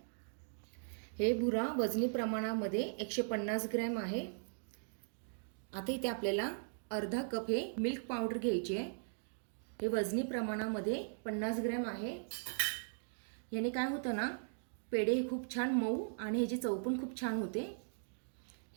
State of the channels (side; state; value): left; silent; digital silence